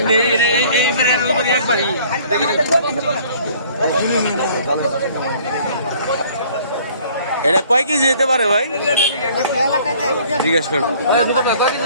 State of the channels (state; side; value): inverted; both; correlation -0.55